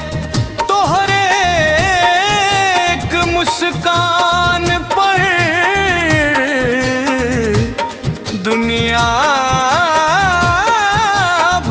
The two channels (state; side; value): identical; both; correlation 1.00